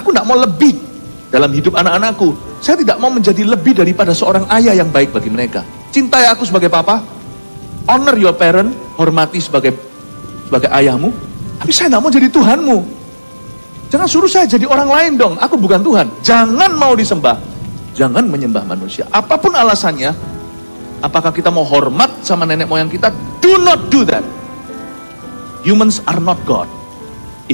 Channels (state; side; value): inverted; both; correlation -1.00